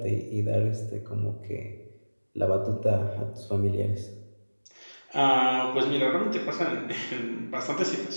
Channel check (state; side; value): inverted; both; correlation -1.00